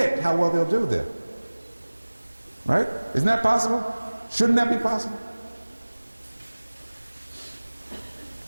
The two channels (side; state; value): both; inverted; correlation -1.00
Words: how well they'll do there. Right? Isn't that possible? Shouldn't that be possible?